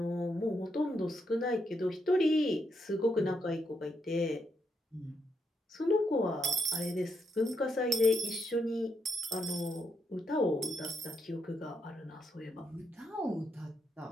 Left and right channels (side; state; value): both; normal; correlation 0.79